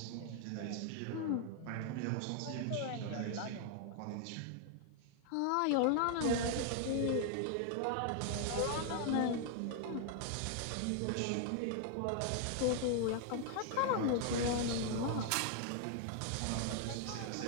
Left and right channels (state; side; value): different; both; correlation 0.00